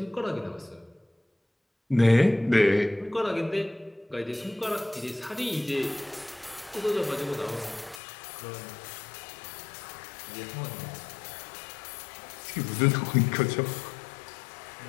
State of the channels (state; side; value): drops out; right; at 8.0 s